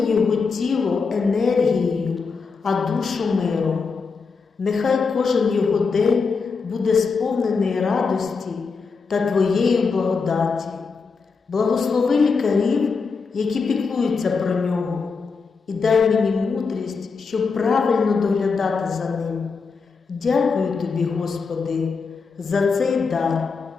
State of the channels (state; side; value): quieter; right; 4.9 dB